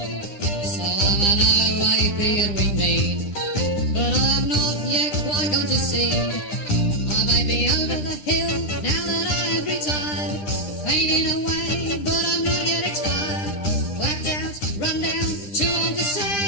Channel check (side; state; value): right; late; 10 ms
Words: So I'm an OAP and we mean, but I'm not yet quite gone to sea. I may be over the hill now that I have retired, fading away, but I'm not yet expired. Clapped out, run down, too old to